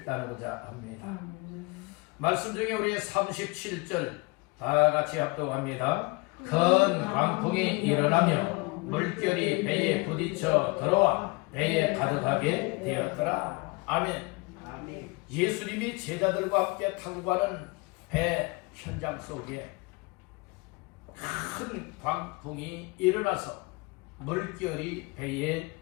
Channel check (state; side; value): quieter; right; 26.8 dB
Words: 나누고자 합니다. 말씀 중에 우리 37절 다 같이 합독합니다. 큰 광풍이 일어나며 물결이 배에 부딪혀 들어와 배에 가득하게 되었더라. 아멘. 예수님이 제자들과 함께 타고 가는 배 현장 속에 큰 광풍이 일어나서 물결이 배에